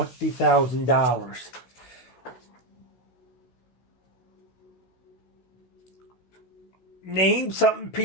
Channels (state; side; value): late; right; 16 ms